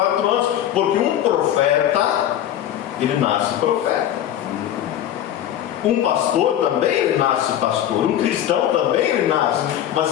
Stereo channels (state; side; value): quieter; right; 11.3 dB